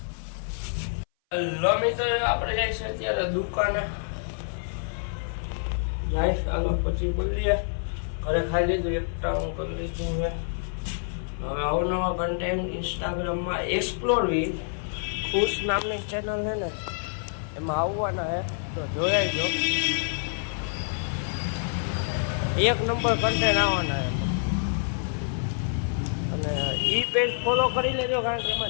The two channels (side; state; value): right; silent; 57 dB below the other